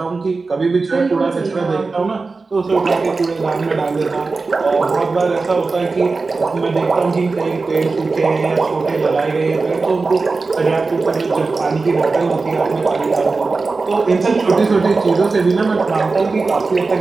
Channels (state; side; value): quieter; left; 4.0 dB